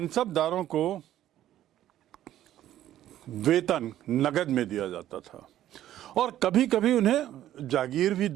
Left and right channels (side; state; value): left; quieter; 12.6 dB